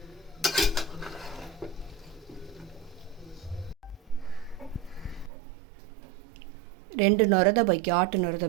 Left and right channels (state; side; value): drops out; left; at 5.3 s